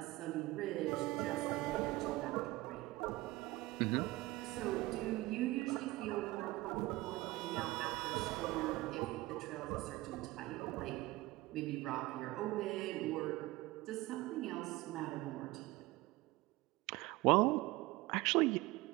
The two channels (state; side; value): quieter; left; 19.4 dB